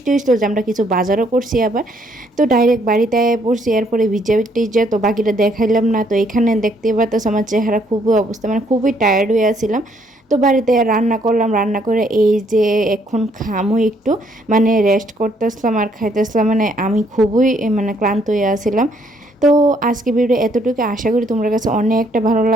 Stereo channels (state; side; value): normal; both; correlation 0.68